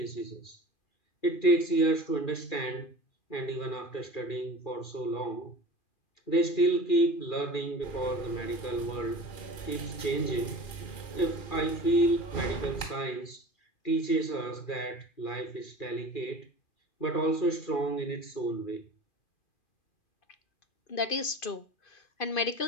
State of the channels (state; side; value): late; right; 2.5 ms